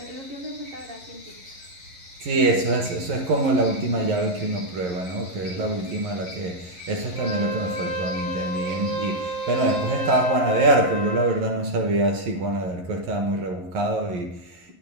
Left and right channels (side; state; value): left; late; 11 ms